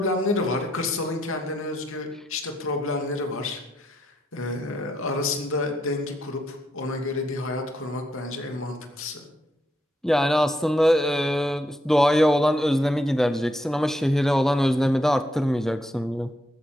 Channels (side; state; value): both; normal; correlation 0.77